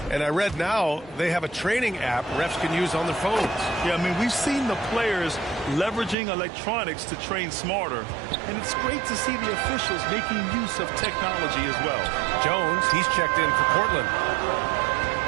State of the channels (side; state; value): left; drops out; at 6.2 s